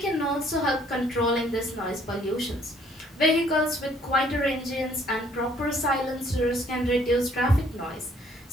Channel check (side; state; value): both; normal; correlation 0.62